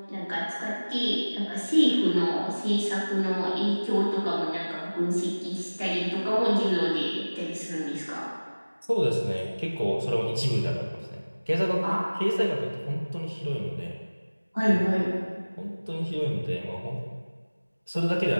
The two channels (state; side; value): inverted; both; correlation -1.00